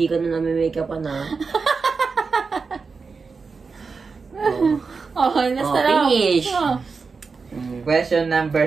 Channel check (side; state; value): left; quieter; 4.8 dB